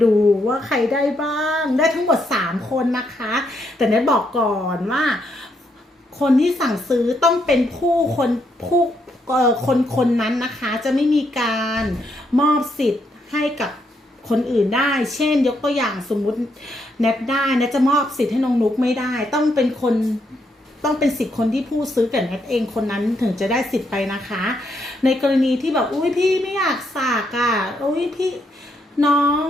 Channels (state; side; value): normal; both; correlation 0.77